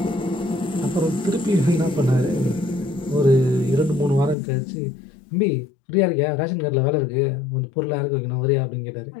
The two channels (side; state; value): right; drops out; at 4.4 s